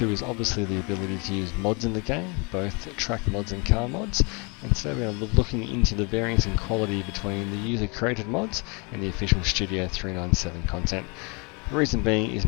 is obviously the ability to use mods in the game, both track mods and car mods, and today we're looking into the variance in quality between the user created mods and the official Studio 397 content. The reason being is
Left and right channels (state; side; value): quieter; right; 30.9 dB